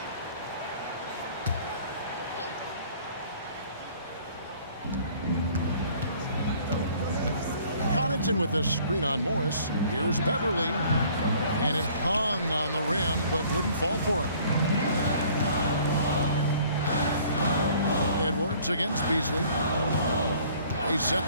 Connaughton with the screen on Morris. Here's Beverly. And it hung on the rim, but wouldn't fall for him. Edwards against Beasley. They set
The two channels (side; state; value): both; inverted; correlation -0.55